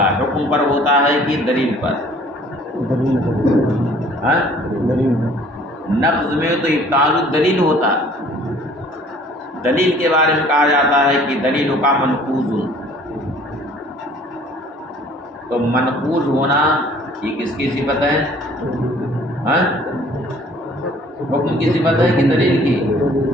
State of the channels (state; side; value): normal; both; correlation 0.54